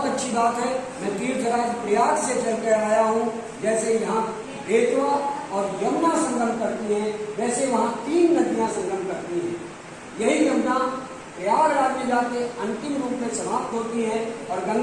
अच्छी बात है। मैं तीर्थराज प्रयाग से चलकर आया हूँ। जैसे यहाँ बेतवा और यमुना संगम करती हैं, वैसे वहाँ 3 नदियाँ संगम करती हैं। यही यमुना प्रयागराज में जाके अंतिम रूप में समाप्त होती हैं और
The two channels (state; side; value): identical; both; correlation 1.00